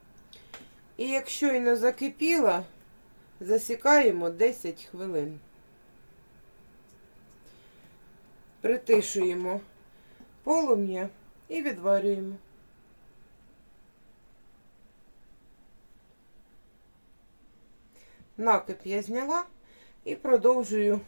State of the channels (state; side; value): inverted; both; correlation -1.00